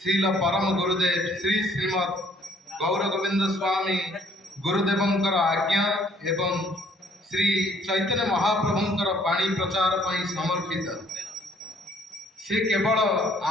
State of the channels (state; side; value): normal; both; correlation 0.62